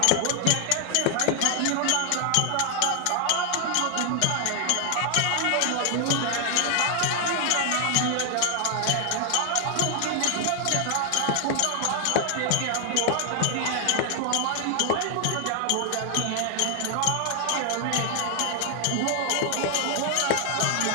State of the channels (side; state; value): both; different; correlation 0.00